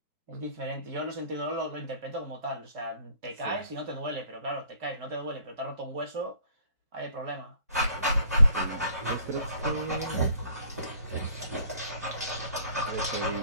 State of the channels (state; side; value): inverted; both; correlation -0.55